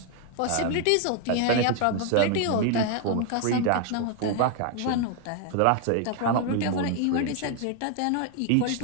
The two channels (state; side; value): different; both; correlation 0.01